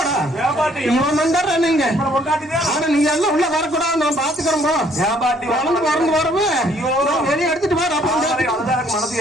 பாட்டி நீங்க நீங்க எல்லாம் உள்ள வரக்கூடாது. நான் பாத்துக்கிறோம். பாட்டி வளர்ந்து வரந்து வரவு வெளியே எடுத்துட்டு வர மனசு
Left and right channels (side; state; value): both; normal; correlation 0.63